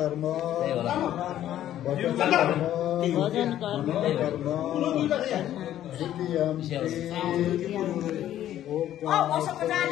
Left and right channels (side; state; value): right; quieter; 12.1 dB